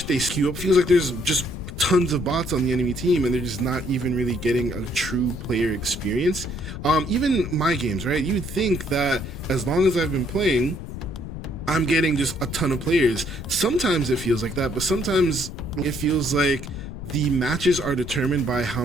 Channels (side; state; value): left; noise; rumble, 9 dB below the sound